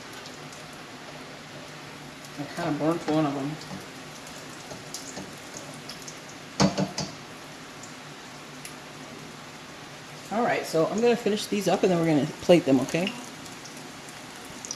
I kind of burnt one of them. Alright, so I'm going to finish these up and then we're going to plate them, okay?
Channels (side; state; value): both; identical; correlation 1.00